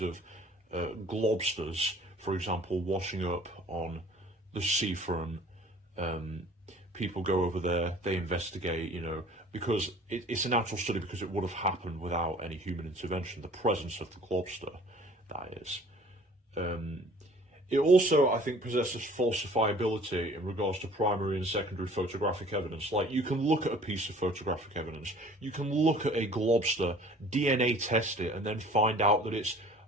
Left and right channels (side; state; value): both; normal; correlation 0.50